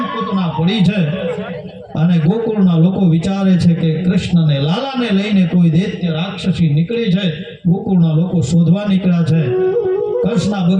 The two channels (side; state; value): both; identical; correlation 1.00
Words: પૂતના પડી છે. અને ગોકુળના લોકો વિચારે છે કે કૃષ્ણને લાલાને લઈને કોઈ દૈત્ય રાક્ષસી નીકળી છે. ગોકુળના લોકો શોધવા નીકળ્યા છે. હર્ષના